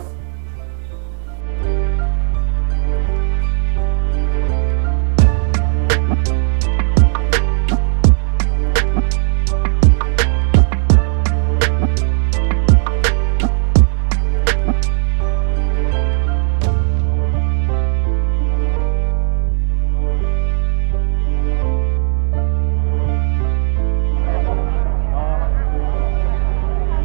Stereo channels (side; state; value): left; silent; digital silence